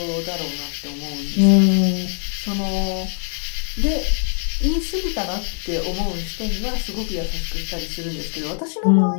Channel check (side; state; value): right; silent; 60 dB below the other